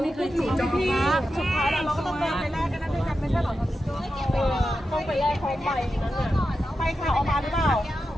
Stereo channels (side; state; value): both; normal; correlation 0.90